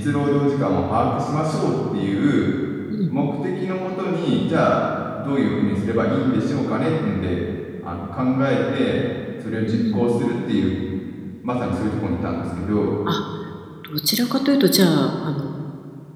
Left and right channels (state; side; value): identical; both; correlation 1.00